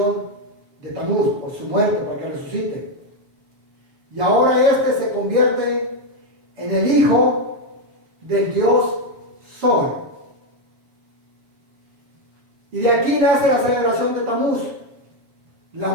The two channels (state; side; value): late; left; 7.3 ms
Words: de Tamuz, por su muerte, para que resucite. Y ahora se convierte en el hijo del Dios Sol. Y de aquí nace la celebración de Tamuz, la